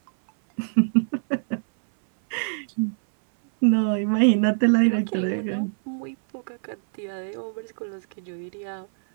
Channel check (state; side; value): silent; left; 62 dB below the other